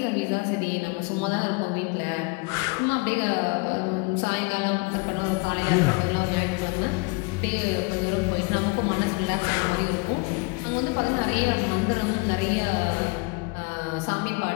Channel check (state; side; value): quieter; right; 28.9 dB